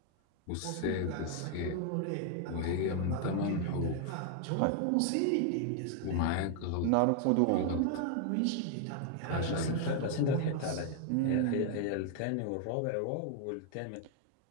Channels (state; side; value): different; both; correlation 0.00